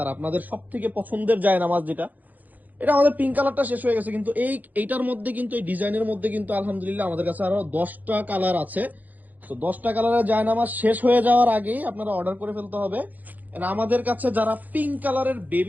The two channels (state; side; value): late; left; 0.082 ms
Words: আর আপনাদের সব থেকে পছন্দের জায়নামাজ যেটা, এটা আমাদের পিঙ্ক কালারটা শেষ হয়ে গেছে, কিন্তু এইটার মধ্যে কিন্তু এই ডিজাইনের মধ্যে কিন্তু আলহামদুলিল্লাহ আমাদের কাছে আরো 10টা কালার আছে। তো 10টা কালারের জায়নামাজ শেষ হয়ে যাওয়ার আগেই আপনারা অর্ডার করে ফেলতে হবে। And আমাদের কাছে যারা পিঙ্ক কালারের